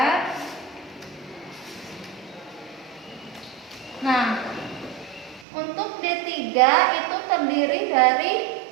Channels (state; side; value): drops out; left; at 5.5 s